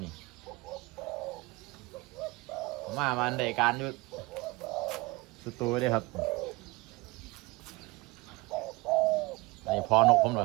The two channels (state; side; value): quieter; left; 23.5 dB